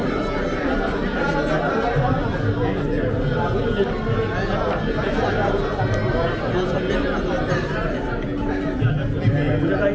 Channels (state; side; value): identical; both; correlation 1.00